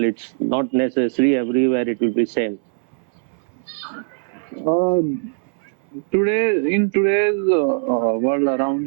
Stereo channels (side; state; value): left; silent; 65 dB below the other